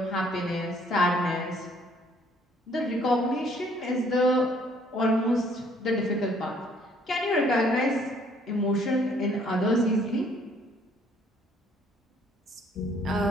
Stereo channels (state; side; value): normal; both; correlation 0.62